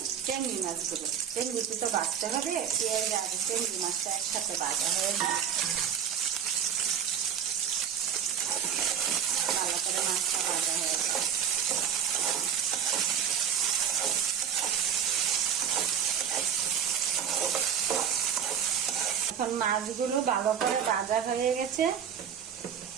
চিংড়ি মাছগুলো। চিংড়িটি তো ভাজতে হবে, পেঁয়াজ আর চিংড়ি মাছটা একসাথে ভাজা হয়ে যায়। ভালো করে মাছটা ভাজা হয়ে যায়। এখন মাছগুলো ভালো করে ভাজা হয়ে গেছে।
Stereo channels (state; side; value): quieter; left; 8.0 dB